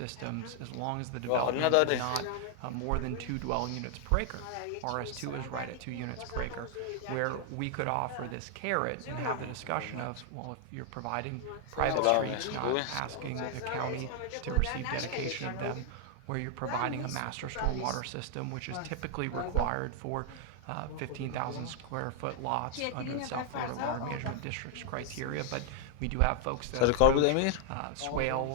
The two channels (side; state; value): both; different; correlation 0.00